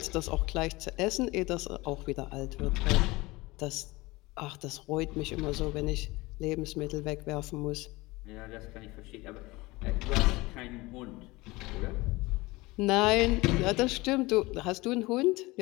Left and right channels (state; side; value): quieter; right; 21.7 dB